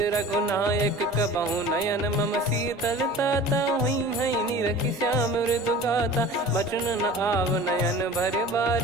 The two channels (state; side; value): normal; both; correlation 0.40